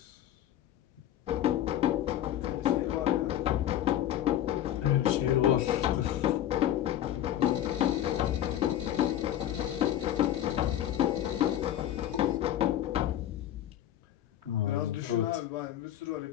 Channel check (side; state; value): right; quieter; 12.0 dB